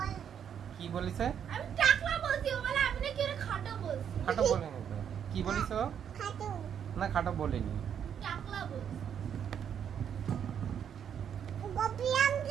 কি বলিছে? আমি টাকলা বলছি, ও বলে আমি নাকি ওরে খাটো বলছি। খাটো বলেনি তো। কি বলিছো? খাটো। না খাটো বলেনি। টাকলা বলছি। গোপিয়াম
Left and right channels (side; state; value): left; quieter; 8.5 dB